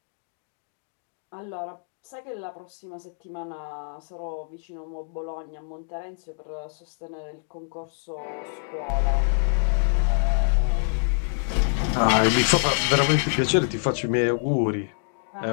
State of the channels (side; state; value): right; silent; digital silence